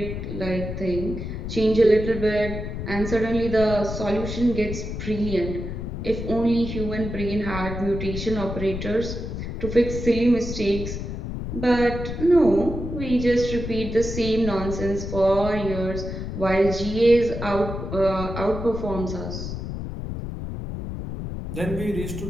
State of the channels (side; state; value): left; noise; rumble, 6 dB below the sound